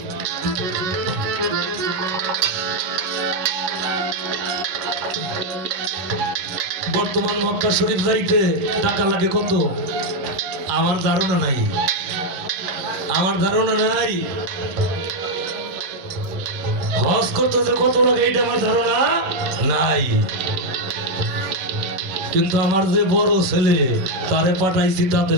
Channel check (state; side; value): late; left; 11 ms